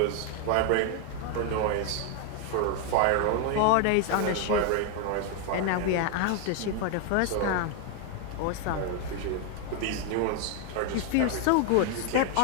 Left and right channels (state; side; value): different; both; correlation 0.01